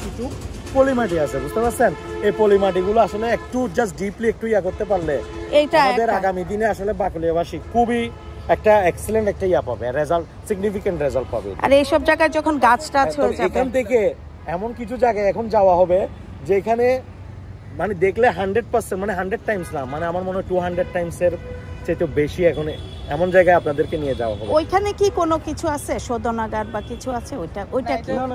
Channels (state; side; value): identical; both; correlation 1.00